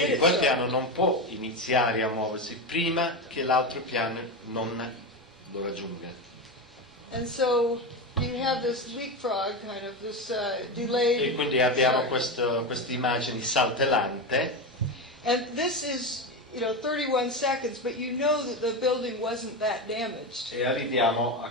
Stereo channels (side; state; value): both; normal; correlation 0.17